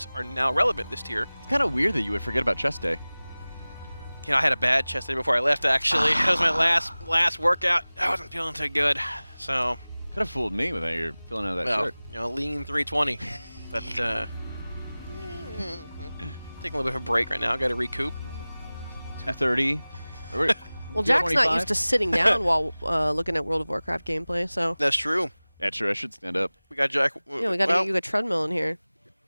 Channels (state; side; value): inverted; both; correlation -0.99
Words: are now relevant this tier. It's kind of weird that you would forget about chest day. You know, I had a bad chest day before I left. Actually, that was my last workout. I wasn't feeling too good, so. Could have fooled me with how you're filling out of that Well, shirt. you know, lean 320, but taking a little bit of a break right now. Got to recoup. 230. Well, Jack's not used to sitting down while looking at World of Warcraft gameplay, so. That's true. Yeah, true. I should stand up. We got Jack. Yeah, we got to get you a treadmill in here.